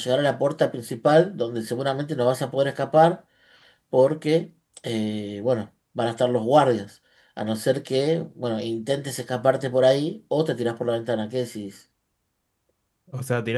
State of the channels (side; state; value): both; identical; correlation 1.00